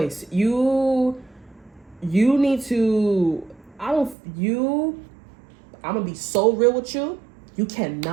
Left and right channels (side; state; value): left; drops out; at 4.2 s